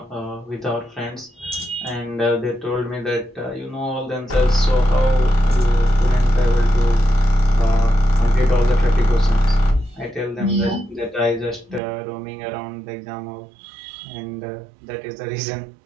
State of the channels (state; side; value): drops out; left; at 11.8 s